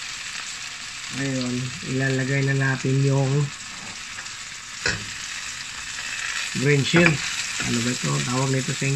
Ngayon, ilalagay na natin yung green shell. Ano ba ito? Tawag nito sa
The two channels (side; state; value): both; identical; correlation 1.00